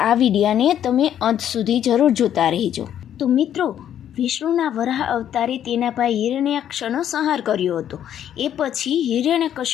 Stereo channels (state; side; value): quieter; right; 10.2 dB